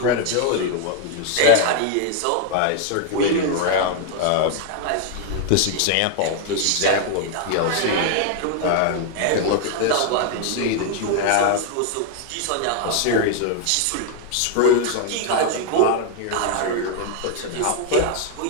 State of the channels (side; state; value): both; different; correlation 0.00